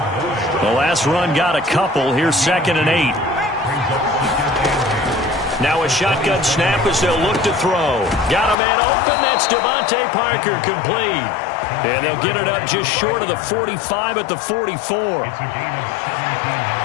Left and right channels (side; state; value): right; drops out; at 8.6 s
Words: The last run got a couple. Here's 2nd and 8. Now a shotgun snap as they'll look to throw. Got a man open. That's Devontae Parker, complete. And they'll get it up just short of the 45 at the 44.